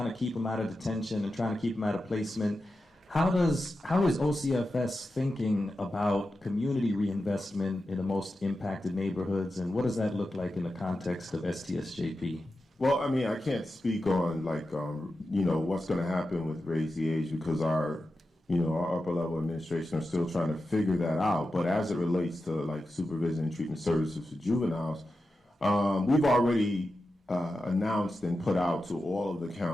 to keep them out of detention and trying to keep them out of placement, how is OCFS thinking about community reinvestment in the most impacted neighborhoods, and what does that look like in the context of STSJP? Well, I mean, I can't speak on what's going to happen with raise the age, because our upper level administration are still trying to figure that out. But as it relates to like supervision and treatment services for juveniles, we've already announced and put out to all of the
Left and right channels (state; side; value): normal; both; correlation 0.91